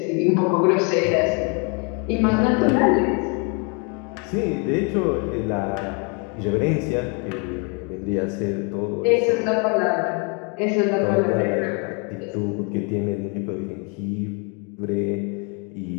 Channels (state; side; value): quieter; right; 34.9 dB